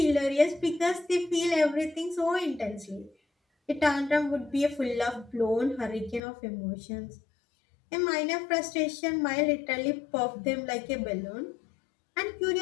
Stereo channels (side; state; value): right; drops out; at 6.2 s